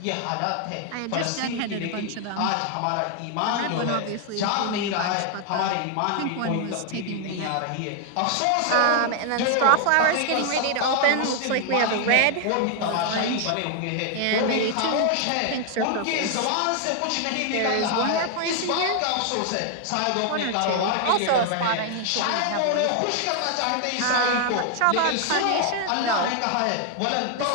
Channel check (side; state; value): both; different; correlation 0.00